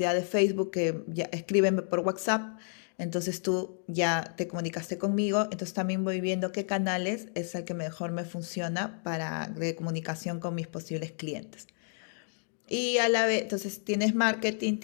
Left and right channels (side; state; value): right; silent; 57 dB below the other